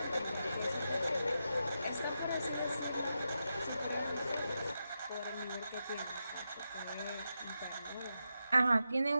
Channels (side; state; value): both; inverted; correlation -0.87